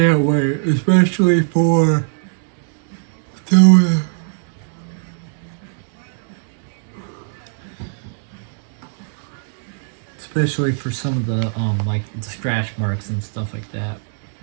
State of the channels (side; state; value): left; silent; 65 dB below the other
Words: wait, especially for especially for some of the like the scratch marks and stuff like that.